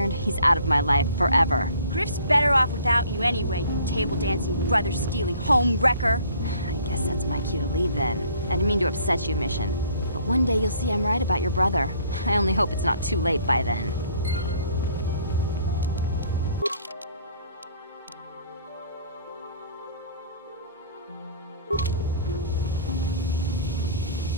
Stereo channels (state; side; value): inverted; both; correlation -0.55